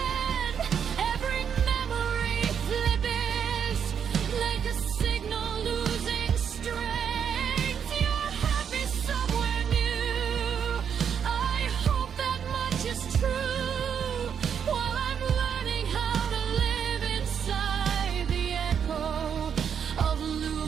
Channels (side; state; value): left; quieter; 7.7 dB